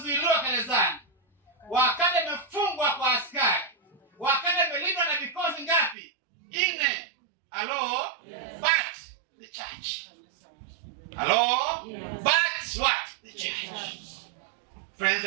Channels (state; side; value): drops out; left; at 6.0 s